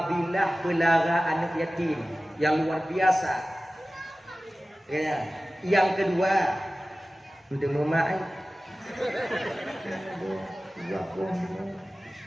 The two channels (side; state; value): both; normal; correlation 0.96